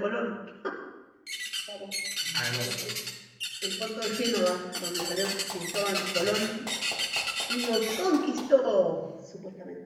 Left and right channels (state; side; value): identical; both; correlation 1.00